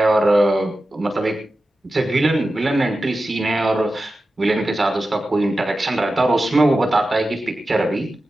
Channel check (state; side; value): normal; both; correlation 0.93